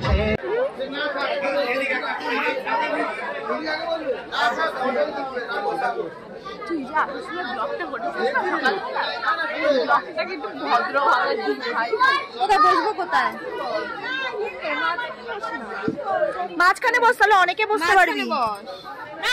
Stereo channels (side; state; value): both; identical; correlation 1.00